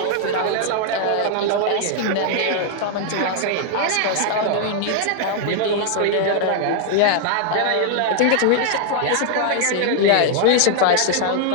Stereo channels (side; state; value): both; different; correlation 0.00